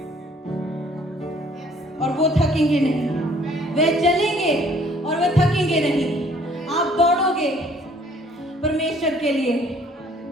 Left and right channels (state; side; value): normal; both; correlation 0.59